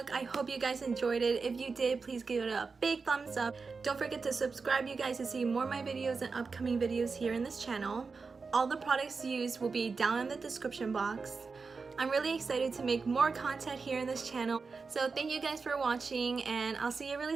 I hope you guys enjoyed it. If you did, please give it a big thumbs up. Don't forget to subscribe, you guys, to see more of my videos and upcoming videos here in this channel. All the products used will be down in the description box. I'm really excited to make more content here in this channel. So thank you guys for watching, and I'll see you really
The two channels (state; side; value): quieter; left; 4.7 dB